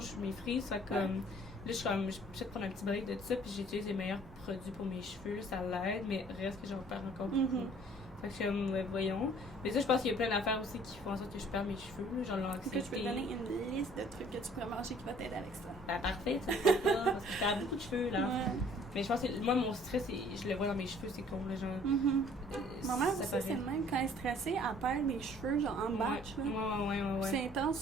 mes frise, fait que, là, je suis comme, je vais peut-être prendre un petit break de ça, puis j'utilise les meilleurs produits pour mes cheveux, là, ça l'aide, mais reste que j'en perds encore beaucoup. Fait que je suis comme, ouais, voyons. Mais ça, je pense qu'il y a plein d'affaires aussi qui font en sorte que je perds mes cheveux, là, genre l'anxiété. Est-ce que je peux te donner une liste de trucs que tu pourrais manger qui va t'aider avec ça? Ben, parfait, tu sais pas, parce que je perds beaucoup de cheveux, là. Ouais. Mais je pense que moi, mon stress, je le vois dans mes cheveux, c'est con, là, genre. Ma mère aussi, paraît. c'est le même. Quand elle est stressée, elle perd les cheveux, genre en batch. Là. Ouais. C'est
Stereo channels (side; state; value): both; normal; correlation 0.56